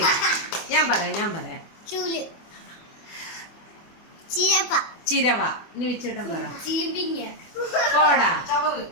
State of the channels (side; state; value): right; late; 24 ms